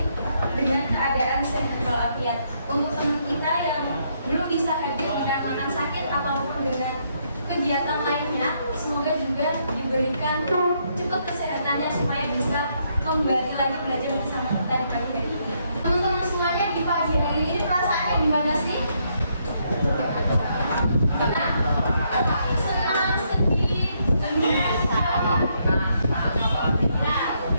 dengan keadaan sehat walafiat. Untuk teman kita yang belum bisa hadir dikarenakan sakit ataupun dengan kegiatan lainnya, semoga juga diberikan cukup kesehatannya supaya bisa kembali lagi belajar bersama kita di pagi hari ini. Teman-teman semuanya, di pagi hari ini perasaannya gimana sih? Gimana? Senang, sedih,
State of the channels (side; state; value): both; inverted; correlation -0.74